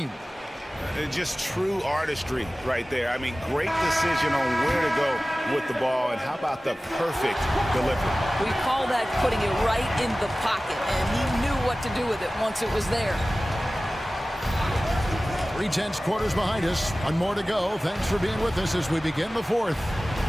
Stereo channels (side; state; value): both; normal; correlation 0.97